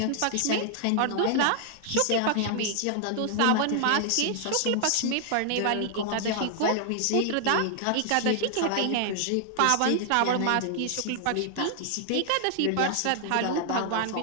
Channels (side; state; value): both; different; correlation 0.00